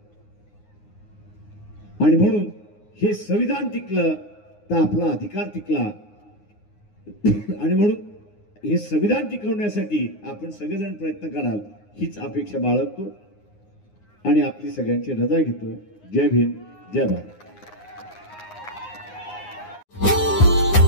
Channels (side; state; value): right; late; 9.6 ms